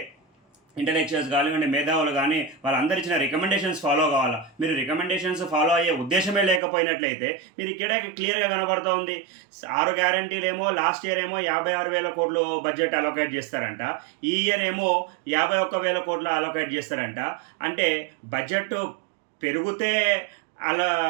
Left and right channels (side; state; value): left; drops out; at 6.6 s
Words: ఇంటలెక్చువల్స్ కానివ్వండి, మేధావులు కానీ వాళ్ళందరూ ఇచ్చిన రికమెండేషన్స్ ఫాలో కావాలా. మీరు రికమెండేషన్స్ ఫాలో అయ్యే ఉద్దేశమే లేకపోయినట్లయితే మీరు ఇక్కడ క్లియర్గా కనబడుతూ ఉంది. 6 గ్యారంటీలు ఏమో లాస్ట్ ఇయర్ ఏమో 56,000 కోట్లు బడ్జెట్ అలొకేట్ చేస్తారంట, ఈ ఇయర్ ఏమో 51,000 కోట్లు అలొకేట్ చేస్తారంట. అంటే బడ్జెట్ పెరిగితే అలా